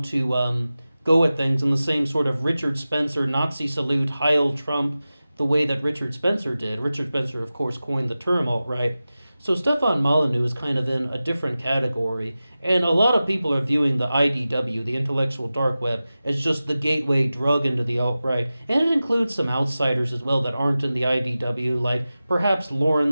to go at things in the same sort of Richard Spencer, Nazi salute, Heil Trump, the way that Richard Spencer did. Richard Spencer, of course, coined the term alt-right. So Stefan Molyneux is kind of in a different category, and a lot of people are viewing the IDW, the intellectual dark web, as just the gateway drug into the alt-right, and it includes some outsiders as well that aren't in the IDW, like perhaps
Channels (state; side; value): inverted; both; correlation -0.95